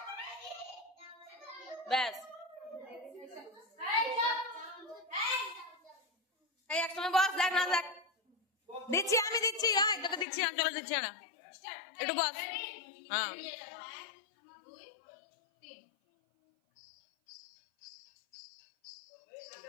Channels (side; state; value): right; drops out; at 10.2 s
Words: ব্যাস এই একসঙ্গে বস দেখ না দেখ দিচ্ছি আমি দিচ্ছি হ্যাঁ তোকে দিচ্ছি আমি চলে দিচ্ছি না একটু বস হ্যাঁ